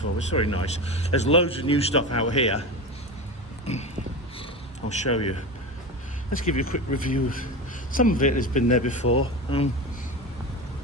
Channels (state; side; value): normal; both; correlation 0.24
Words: It's very nice. There's loads of new stuff out here. I'll show you. Let's give you a quick review. Some of it has been there before.